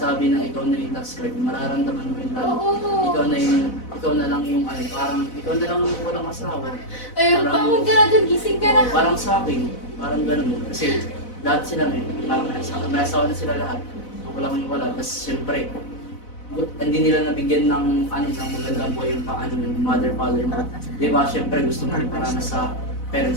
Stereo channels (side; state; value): right; late; 4.0 ms